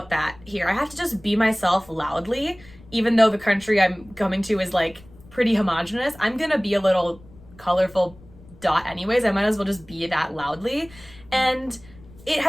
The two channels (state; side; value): noise; left; rumble, 23 dB below the sound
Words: that here. I have to just be myself loudly, even though the country I'm coming to is like pretty homogenous. I'm gonna be a little colorful dot anyways. I might as well just be that loudly. And it